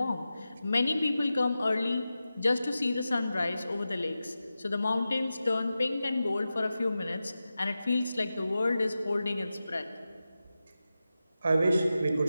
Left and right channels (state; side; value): inverted; both; correlation -0.93